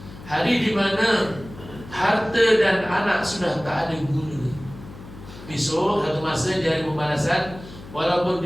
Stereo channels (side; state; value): left; noise; hum, 16 dB below the sound